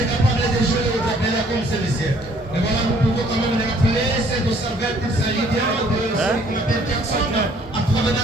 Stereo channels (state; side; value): normal; both; correlation 0.60